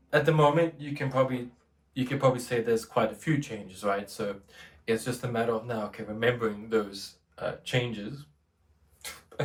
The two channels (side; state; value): both; identical; correlation 1.00